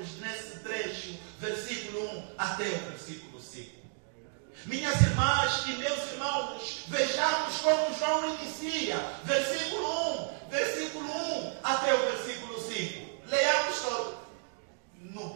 nesse trecho, versículo 1 até o versículo 5. Minhas irmãs e meus irmãos, vejamos como João inicia. Versículo 1 até o versículo 5. Leamos todos. No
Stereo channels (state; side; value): silent; left; 56 dB below the other